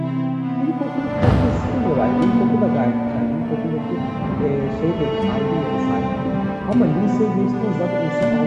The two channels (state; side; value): identical; both; correlation 1.00